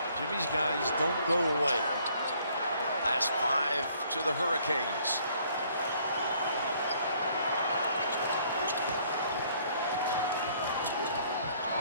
Jimmy's guys don't go away. Last 5 to the Hurricanes.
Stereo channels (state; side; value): inverted; both; correlation -0.62